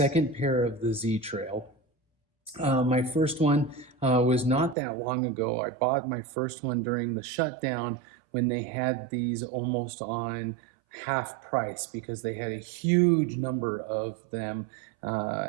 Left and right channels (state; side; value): drops out; left; at 4.8 s